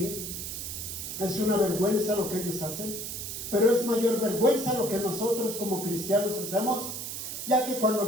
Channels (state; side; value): noise; right; hiss, 6 dB below the sound